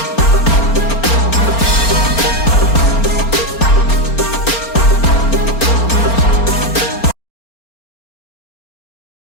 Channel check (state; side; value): late; right; 4.3 ms